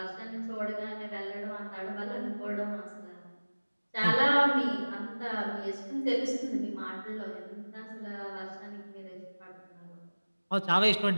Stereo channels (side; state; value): both; inverted; correlation -1.00